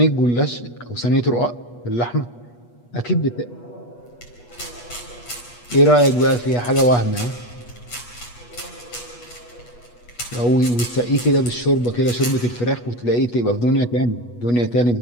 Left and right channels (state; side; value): late; right; 8.3 ms